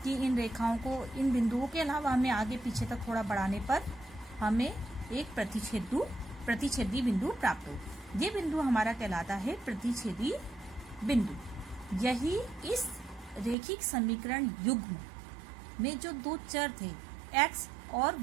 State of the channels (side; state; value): left; drops out; at 13.6 s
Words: कि इन रेखाओं को, इन बिंदुओं के अलावा हमें आगे पीछे तक थोड़ा बढ़ाने पर हमें एक प्रतिच्छेदी बिंदु प्राप्त हो। ये बिंदु हमारा कहलाता है प्रतिच्छेदी बिंदु। यही इस रैखिक समीकरण युग्म में जो 2 चर थे x और